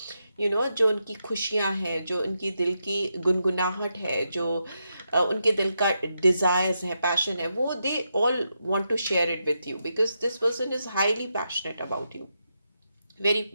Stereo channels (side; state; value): both; inverted; correlation -0.84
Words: जो उनकी खुशियाँ हैं, जो उनकी दिल की गुनगुनाहट है, जो उनके दिल का डिज़ायर्स है, पैशन है, वो they all want to share it with you because this person is highly passionate about you, very